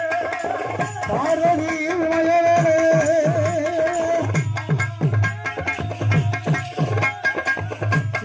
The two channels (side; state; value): both; identical; correlation 1.00